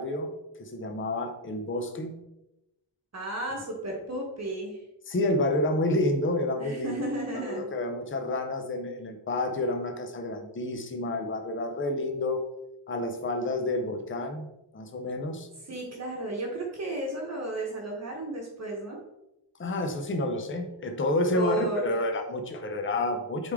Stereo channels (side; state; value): both; normal; correlation -0.03